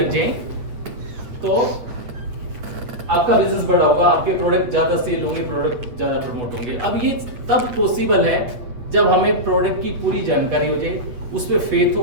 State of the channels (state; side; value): late; left; 8.5 ms